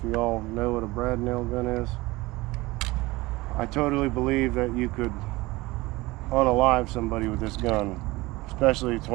you all know what a brad nail gun is. I totally believe that you could unalive somebody with this gun, especially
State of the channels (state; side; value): quieter; left; 21.0 dB